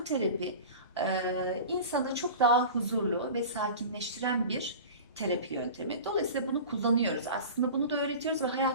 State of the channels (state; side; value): inverted; both; correlation -0.35